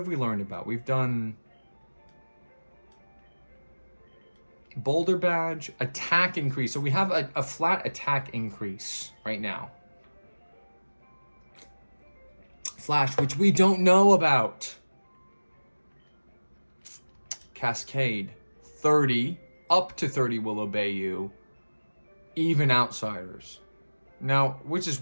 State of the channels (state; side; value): inverted; both; correlation -1.00